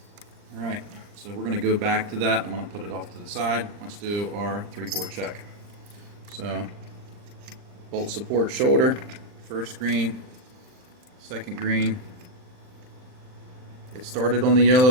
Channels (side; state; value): left; late; 39 ms